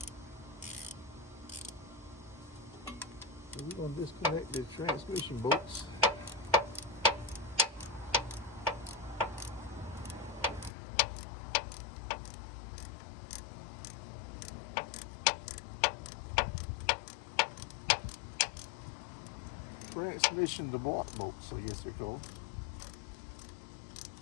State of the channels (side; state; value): right; drops out; at 10.7 s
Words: So we're going to disconnect the transmission bolts. Transmission to block bolts, I guess they're called.